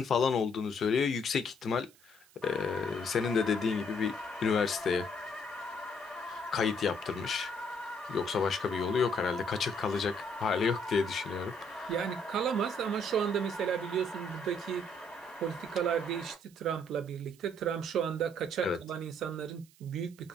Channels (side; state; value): right; noise; hiss, 27 dB below the sound